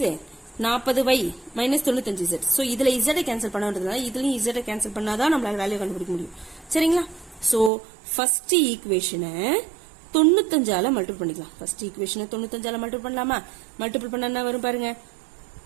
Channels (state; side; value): drops out; left; at 7.7 s